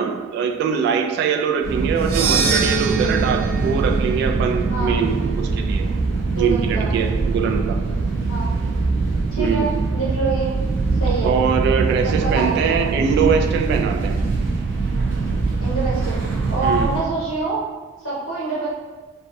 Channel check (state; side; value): quieter; left; 4.4 dB